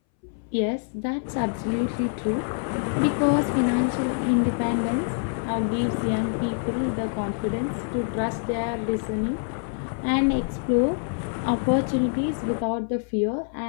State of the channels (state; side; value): silent; right; 61 dB below the other